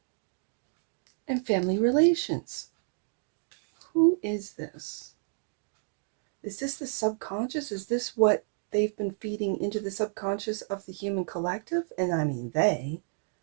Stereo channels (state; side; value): silent; left; 58 dB below the other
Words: and family relations. Who is this? Is this the subconscious? Is this what they've been feeding into the subconscious of the human collective? And I mean they,